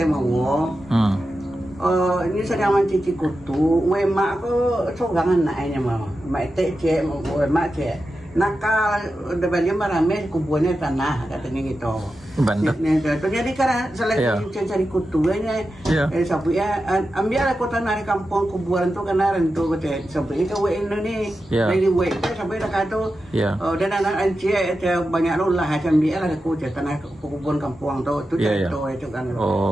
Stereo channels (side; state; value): both; normal; correlation 0.91